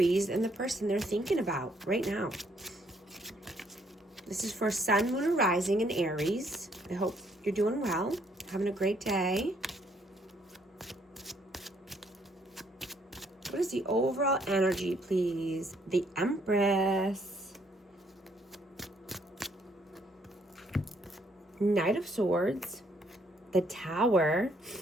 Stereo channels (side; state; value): both; normal; correlation 0.68